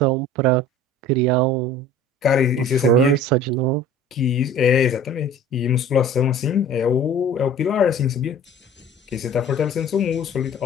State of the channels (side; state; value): both; normal; correlation 0.44